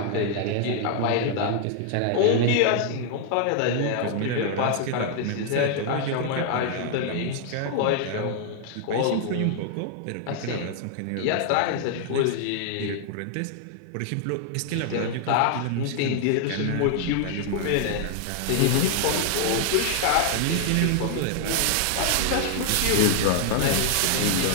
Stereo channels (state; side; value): different; both; correlation 0.00